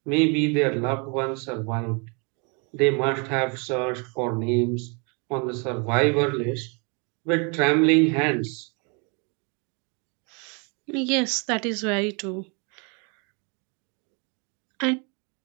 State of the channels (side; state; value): left; quieter; 33.9 dB